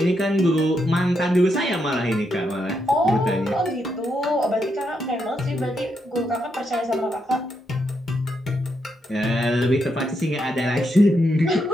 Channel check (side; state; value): both; normal; correlation 0.81